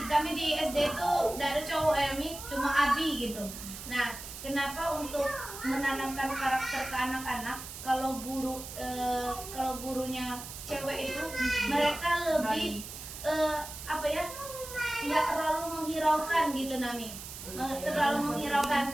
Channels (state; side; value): noise; right; hiss, 11 dB below the sound